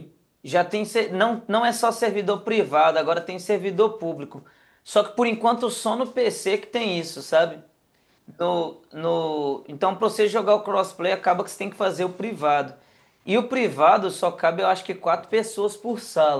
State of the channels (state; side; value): identical; both; correlation 1.00